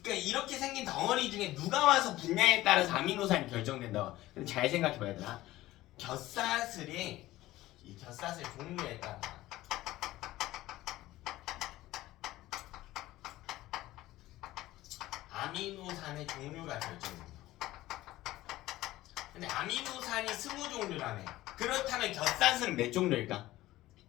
그러니까 이렇게 생긴 덩어리 중에 누가 와서 붙냐에 따라서 아미노산이 결정된다. 근데 잘 생각해봐야 되나? 곁사슬이 이 곁사슬 종류에 따라 아미노산의 종류가 결정된다. 근데 아미노산이 20종류라며. 그렇다면 곁사슬은 몇 종류일까?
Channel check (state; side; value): quieter; right; 16.5 dB